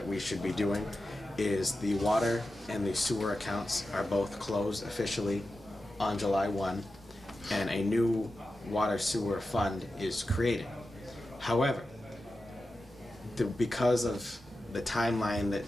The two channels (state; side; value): normal; both; correlation 0.92